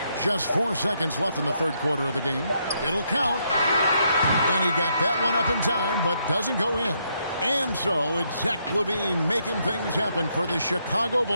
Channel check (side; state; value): both; inverted; correlation -0.76